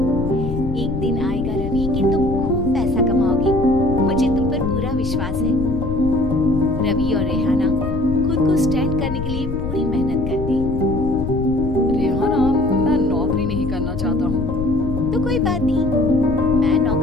एक दिन आएगा रवि कि तुम खूब पैसा कमाओगी। मुझे तुम पर पूरा विश्वास है। रवि और रेहाना खुद को स्टैंड करने के लिए पूरी मेहनत करते। रेहाना, मैं नौकरी नहीं करना चाहता हूँ। तो कोई बात नहीं, मैं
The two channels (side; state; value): left; noise; rumble, 6 dB below the sound